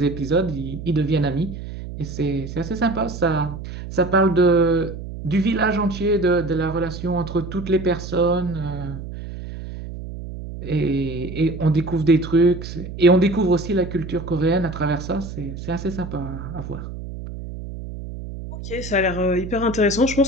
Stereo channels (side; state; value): right; noise; hum, 9 dB below the sound